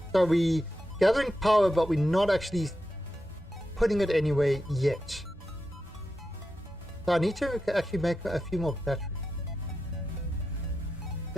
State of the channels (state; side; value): normal; both; correlation 0.89